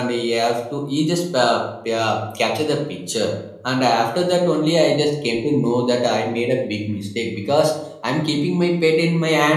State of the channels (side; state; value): both; identical; correlation 1.00